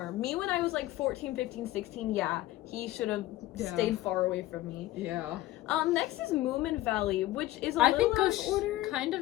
Me when I was like 14, 15, 16, he should have stayed far away from me. Yeah. Next is Moomin Valley, which is a little out of order. Kind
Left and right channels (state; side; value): quieter; right; 16.0 dB